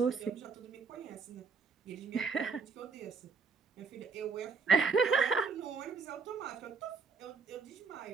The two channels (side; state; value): left; quieter; 5.2 dB